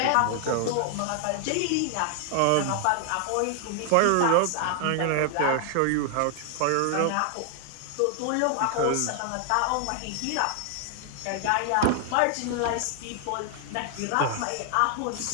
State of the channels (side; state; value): both; different; correlation 0.00